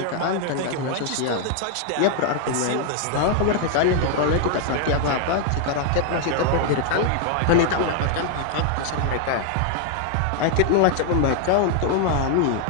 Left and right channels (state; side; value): different; both; correlation 0.00